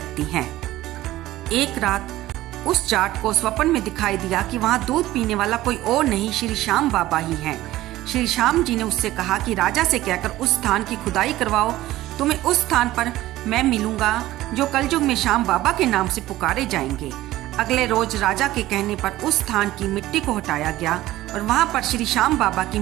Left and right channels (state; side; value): quieter; left; 15.9 dB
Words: हैं। एक रात उस जाट को स्वप्न में दिखाई दिया कि वहां दूध पीने वाला कोई और नहीं, श्री श्याम बाबा ही हैं। श्री श्याम जी ने उससे कहा कि राजा से कहकर उस स्थान की खुदाई करवाओ, तुम्हें उस स्थान पर मैं मिलूंगा जो कलयुग में श्याम बाबा के नाम से पुकारे जाएंगे। अगले रोज राजा के कहने पर उस स्थान की मिट्टी को हटाया गया और वहां पर श्री श्याम बाबा की